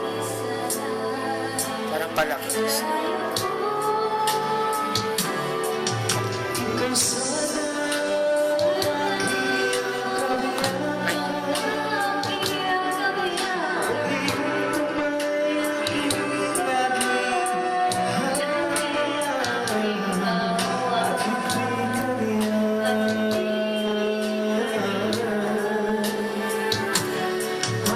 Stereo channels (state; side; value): identical; both; correlation 1.00